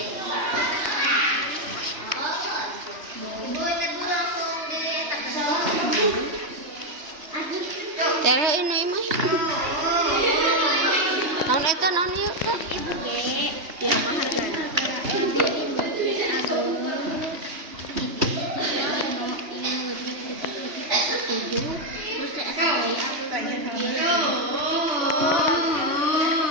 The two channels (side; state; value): left; late; 3.1 ms